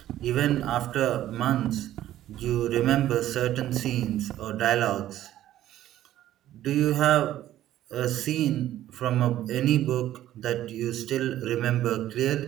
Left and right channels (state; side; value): quieter; left; 13.1 dB